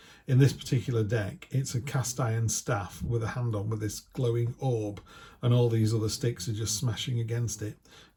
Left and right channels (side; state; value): both; identical; correlation 1.00